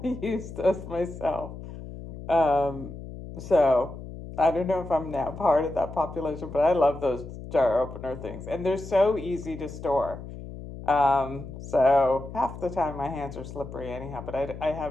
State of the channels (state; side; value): noise; left; hum, 12 dB below the sound